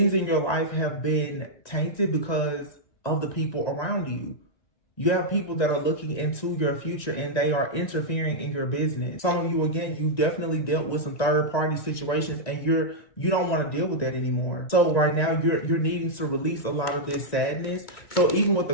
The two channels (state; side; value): late; right; 1.9 ms